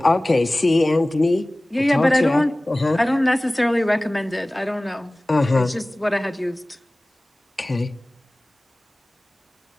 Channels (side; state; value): both; normal; correlation 0.98